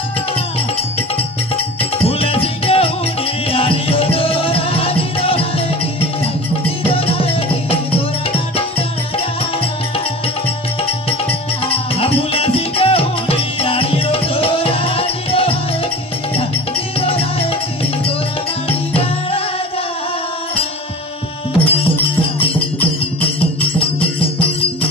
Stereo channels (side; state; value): both; normal; correlation 0.35